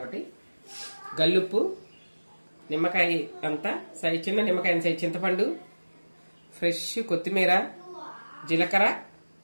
గల్లుప్పు, నిమ్మకాయ అంతా చిన్న నిమ్మకాయ సైజ్ చింతపండు, ఫ్రెష్ కొత్తిమీర, జీలకర్ర,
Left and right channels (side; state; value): both; inverted; correlation -1.00